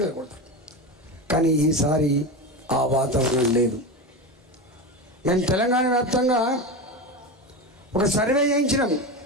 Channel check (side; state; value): both; normal; correlation 0.22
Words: వెళ్ళకూడదు. కానీ ఈసారి ఆ వాతావరణం లేదు. మేము తెలంగాణ వ్యాప్తంగా ఒక సర్వే చేయించినాం